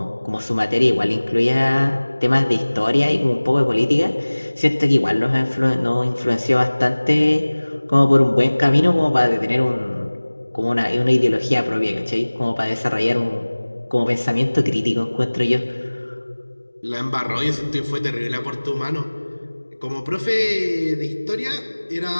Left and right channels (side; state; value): both; inverted; correlation -1.00